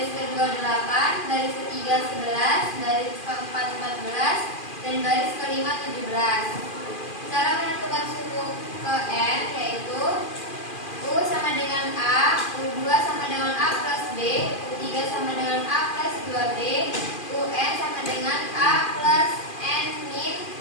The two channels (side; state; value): right; late; 2.4 ms